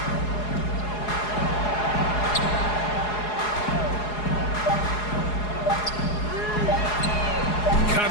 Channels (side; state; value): right; late; 4.8 ms